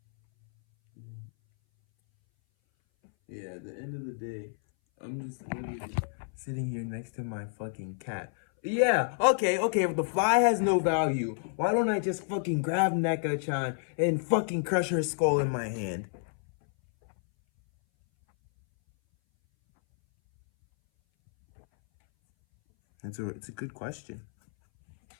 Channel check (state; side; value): silent; right; 58 dB below the other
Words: Yeah, at the end of the day, I'm just literally sitting here next to my fucking cat. Yeah, okay, if the fly has no value, why don't I just fucking grab Neko-chan and fucking crush her skull in my hand? It's a good question.